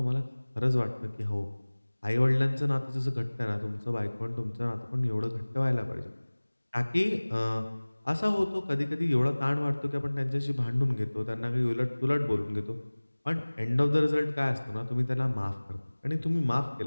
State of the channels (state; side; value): inverted; both; correlation -1.00